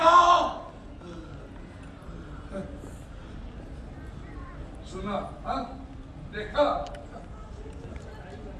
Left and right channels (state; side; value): identical; both; correlation 1.00